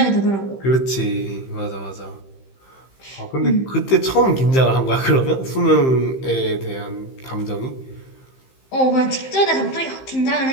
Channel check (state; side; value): late; right; 15 ms